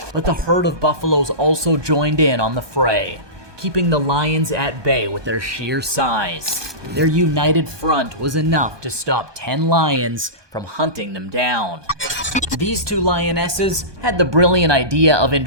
But the herd of buffaloes also joined in on the fray, keeping the lions at bay with their sheer size. Their united front was enough to stop 10 lions from hunting them down. These 2 lionesses had the brilliant idea of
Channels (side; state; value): left; late; 1.2 ms